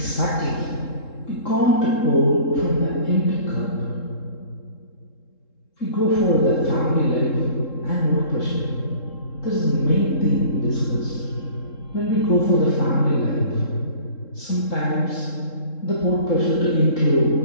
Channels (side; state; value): right; late; 3.7 ms